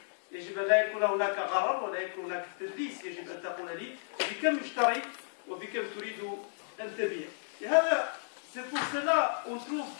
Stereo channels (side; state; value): right; silent; digital silence